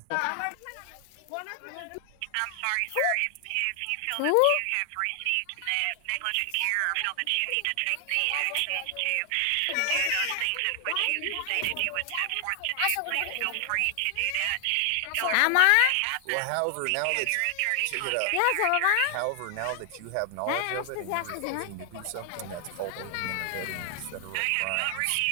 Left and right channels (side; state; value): both; different; correlation 0.00